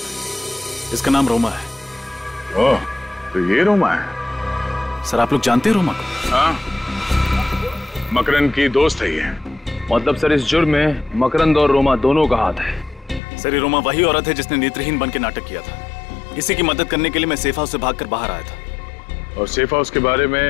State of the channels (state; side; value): drops out; right; at 13.2 s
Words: है, इसका नाम रोमा है। ओह, तो ये रोमा है? सर आप लोग जानते हैं रोमा को? हाँ, मकरंद की दोस्त है ये। मतलब सर इस जुर्म में मकरंद और रोमा दोनों का हाथ है। सर ये रोमा वही औरत है जिसने नेत्रहीन बन के नाटक किया था। इसी की मदद करने के लिए मैं सेफ हाउस से भागकर बाहर आया था। और सेफ हाउस के बारे